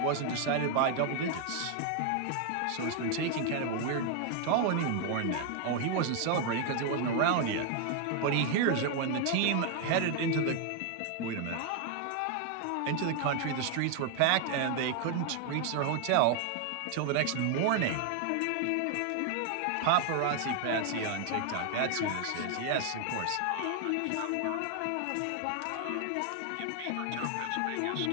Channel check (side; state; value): both; different; correlation 0.00